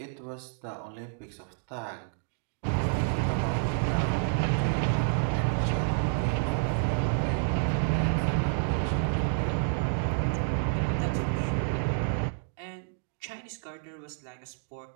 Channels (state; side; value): silent; left; digital silence